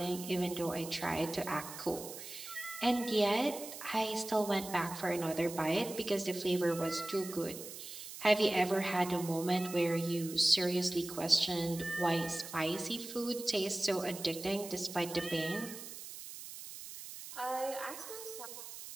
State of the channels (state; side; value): noise; right; hiss, 11 dB below the sound